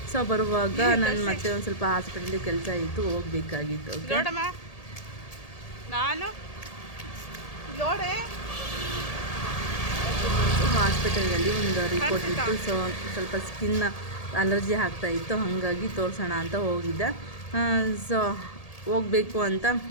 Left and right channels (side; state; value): right; late; 1.8 ms